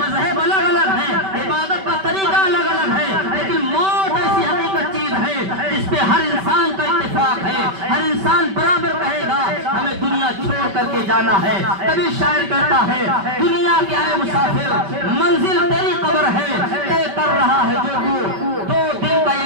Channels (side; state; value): left; late; 5.2 ms